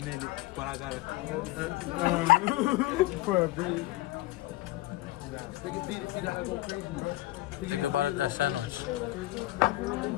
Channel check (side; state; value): right; quieter; 17.9 dB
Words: but I gotta. For a bit. Pick a beat if you gotta go crazy, bro. Think about it, that sandwich.